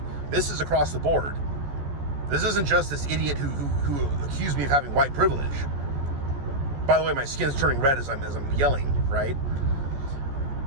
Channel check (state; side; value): late; left; 14 ms